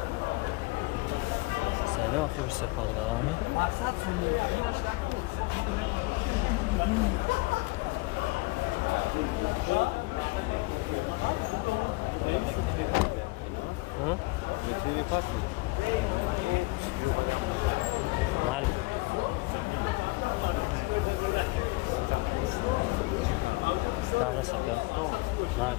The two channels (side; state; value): right; quieter; 23.6 dB